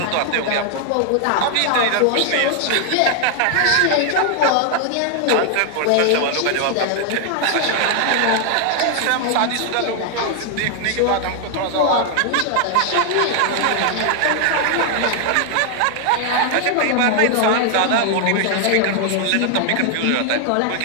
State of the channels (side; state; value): both; different; correlation 0.00